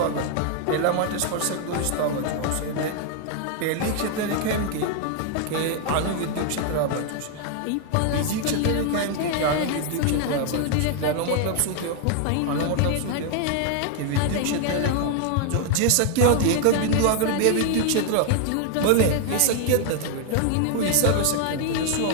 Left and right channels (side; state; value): both; different; correlation 0.00